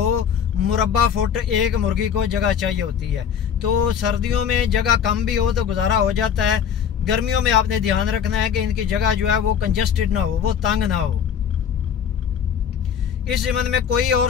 मुरब्बा फुट एक मुर्गी को जगह चाहिए होती है। तो सर्दियों में जगह कम भी हो तो गुजारा हो जाता है, गर्मियों में आपने ध्यान रखना है कि इनकी जगह जो है वो कंजस्टेड ना हो, वो तंग ना हो। इस ज़िम्न में कोई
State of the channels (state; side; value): quieter; right; 8.0 dB